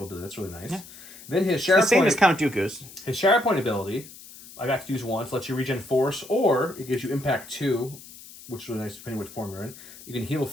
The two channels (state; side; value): noise; left; hiss, 18 dB below the sound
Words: ability. That's really nice. Yeah. Then his The same as Shatterpoint, Count Dooku's. his Shatterpoint ability, I got to use once, lets you regen force, or it gives you impact 2, which is really nice depending which form you're in. You can heal